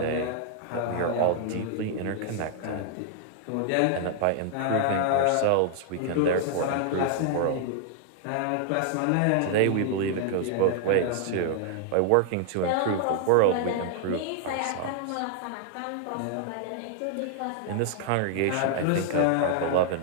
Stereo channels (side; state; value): both; different; correlation 0.00